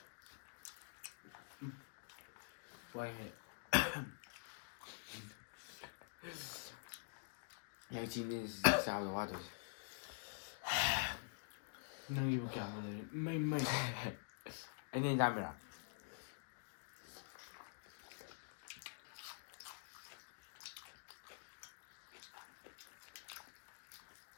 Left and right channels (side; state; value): right; silent; digital silence